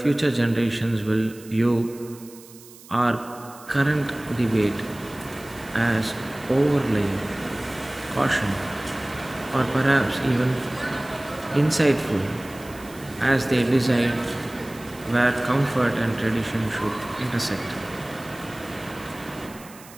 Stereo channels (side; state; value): right; noise; hiss, 21 dB below the sound